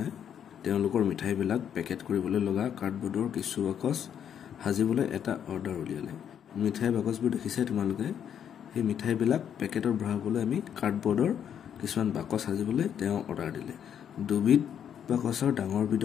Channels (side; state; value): right; quieter; 8.9 dB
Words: তেওঁলোকৰ মিঠাই বিলাক পেকেট কৰিবলৈ লগা কাৰ্ডবোৰ্ডৰ কিছু বাকচ হাজিবলৈ এটা অৰ্ডাৰ উলিয়ালে মিঠাই বাকচবোৰ দেখিছে তোমালোকে এই মিঠাই বিলাক পেকেটৰ ভৰাবলৈ আমি কাৰ্ডবোৰ্ডৰ কিছুমান বাকচ হাজিবলৈ তেওঁ অৰ্ডাৰ দিলে দুবিধ বাকচৰ ডাঙৰ